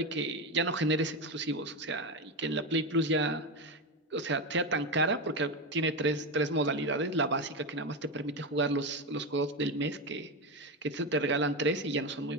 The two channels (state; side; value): normal; both; correlation 0.14